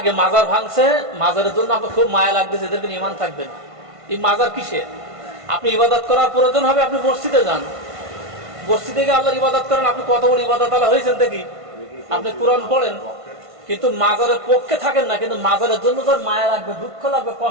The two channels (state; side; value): late; left; 1.5 ms